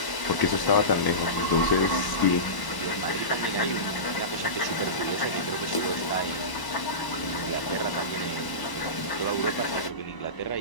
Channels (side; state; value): right; late; 1.0 ms